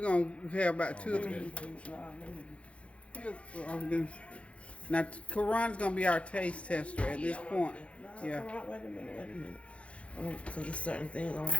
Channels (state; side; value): late; right; 0.061 ms